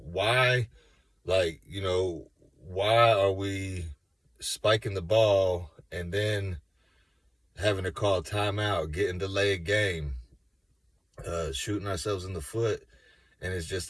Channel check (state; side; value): identical; both; correlation 1.00